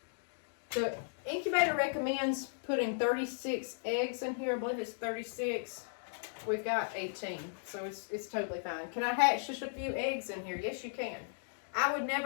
The incubator recommends putting 36 eggs in here. I believe it's 36. We've got 18, so it's totally fine. Can I hatch just a few eggs in here? Yes, you can. I would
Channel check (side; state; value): right; silent; digital silence